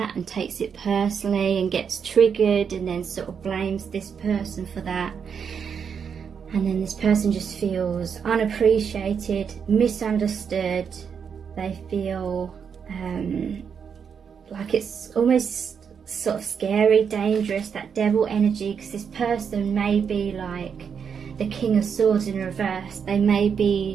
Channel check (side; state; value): left; quieter; 6.9 dB